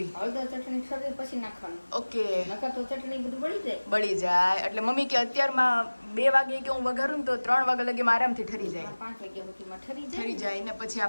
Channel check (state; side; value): inverted; both; correlation -1.00